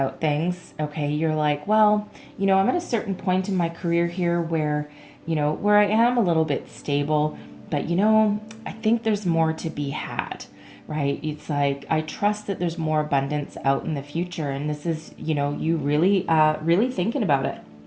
things, okay, you're like, well, you know, I'm at a certain point in my career here where, you know, where I am a little bit stable, but, you know, I think there's more to be had, right? It's like, I trust that there's more abundance out in the future. And this is, you know, you really thinking about it,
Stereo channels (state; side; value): identical; both; correlation 1.00